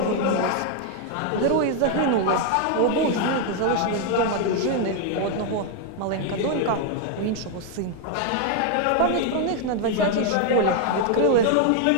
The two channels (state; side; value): different; both; correlation 0.01